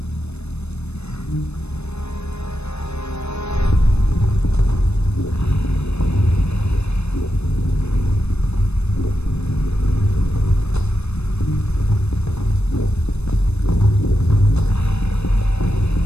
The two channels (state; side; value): late; right; 0.80 ms